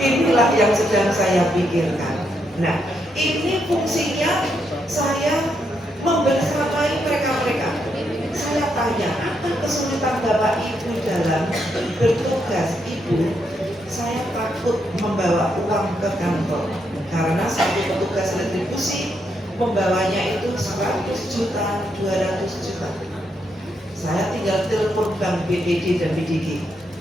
yang sedang saya pikirkan. Nah, ini fungsinya saya membersamai mereka-mereka. Saya tanya, apa kesulitan Bapak Ibu dalam bertugas? Ibu, saya takut membawa uang ke kantor karena satu petugas retribusi membawanya itu 100 juta, 200 juta. Saya tinggal telepon Bank BPD dan BDG.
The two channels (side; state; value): both; normal; correlation 0.79